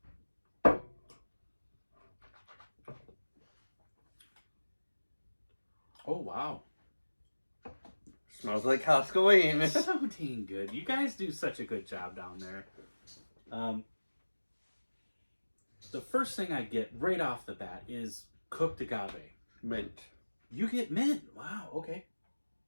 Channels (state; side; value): inverted; both; correlation -1.00